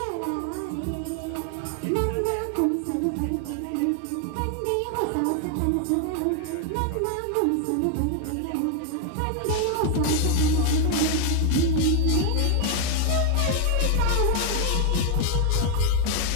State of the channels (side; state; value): both; different; correlation 0.00